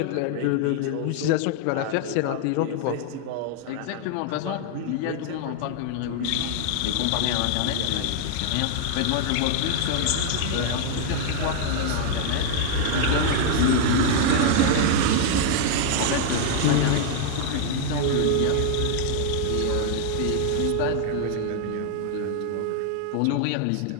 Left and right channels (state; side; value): different; both; correlation -0.01